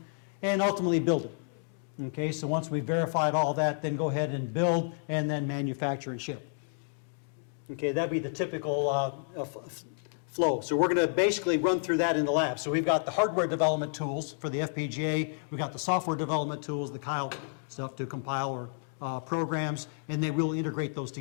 and ultimately build it. Okay, so once we've verified all that, then go ahead and build and then manufacture and ship. Okay, that'd be the typical flow. So we're going to basically run through that in the lab. So we've got the hardware development tools for the FPGA, we've got the software development tools, the Kyle stuff to compile our programs, and then we'll integrate those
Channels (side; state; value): right; silent; digital silence